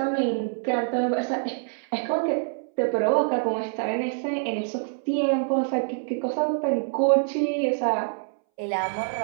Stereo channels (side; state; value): left; silent; 61 dB below the other